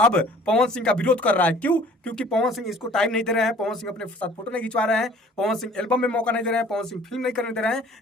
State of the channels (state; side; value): normal; both; correlation 0.51